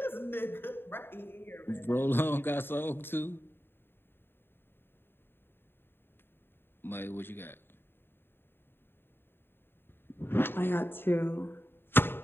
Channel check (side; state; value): right; late; 0.11 ms